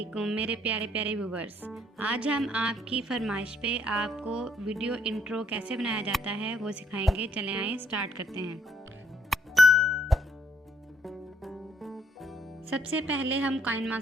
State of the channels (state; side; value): normal; both; correlation 0.68